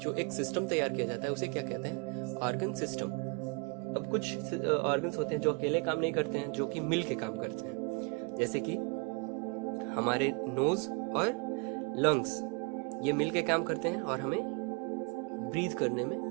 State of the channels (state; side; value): quieter; left; 32.6 dB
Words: एक सिस्टम तैयार किया जाता है उसे क्या कहते हैं? Organ system. अब कुछ ऑर्गन्स होते हैं जो अकेले काम नहीं करते हैं, जो कि मिल के काम करते हैं। जैसे कि हमारे नोज और लंग्स ये मिल के काम करते हैं और हमें ब्रीथ करने